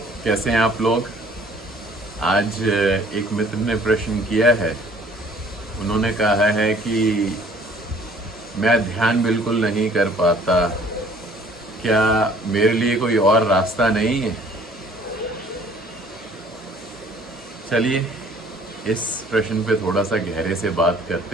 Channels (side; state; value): both; normal; correlation 0.55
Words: कैसे हैं आप लोग। आज एक मित्र ने प्रश्न किया है। उन्होंने कहा है कि मैं ध्यान बिल्कुल नहीं कर पाता, क्या मेरे लिए कोई और रास्ता नहीं है। चलिए इस प्रश्न पे थोड़ा सा गहरे से बात